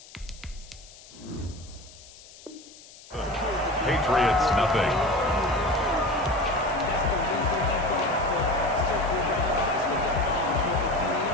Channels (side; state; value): left; noise; hiss, 20 dB below the sound